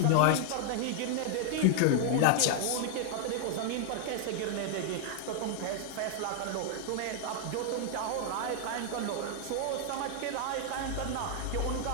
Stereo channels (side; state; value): both; different; correlation 0.00